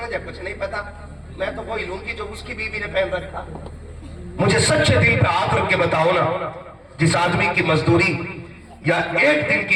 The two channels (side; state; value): both; identical; correlation 1.00